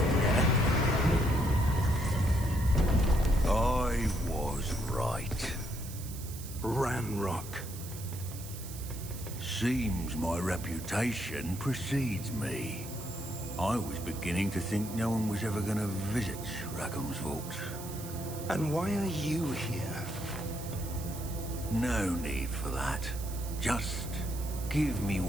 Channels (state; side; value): noise; right; hiss, 13 dB below the sound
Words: I was right. Ranrock. Seems my reputation precedes me. I was beginning to think no one was ever going to visit Rackham's vault. And why are you here? No need for that. Just give me